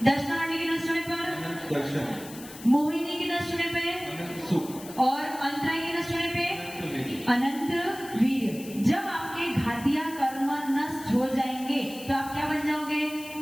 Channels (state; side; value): noise; left; hiss, 16 dB below the sound